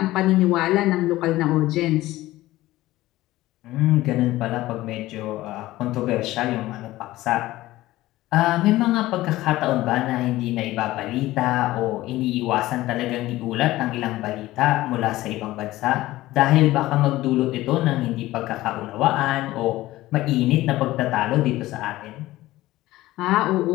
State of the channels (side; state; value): right; quieter; 16.9 dB